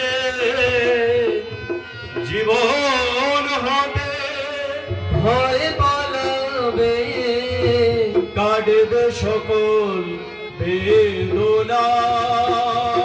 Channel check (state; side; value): identical; both; correlation 1.00